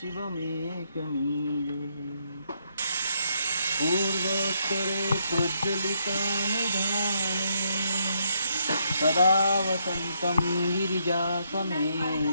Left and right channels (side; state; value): both; inverted; correlation -0.75